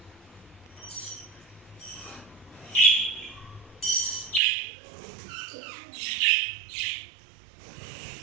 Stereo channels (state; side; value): drops out; left; at 4.4 s